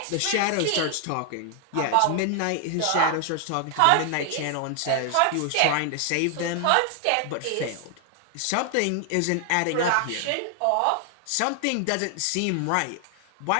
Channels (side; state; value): both; different; correlation 0.00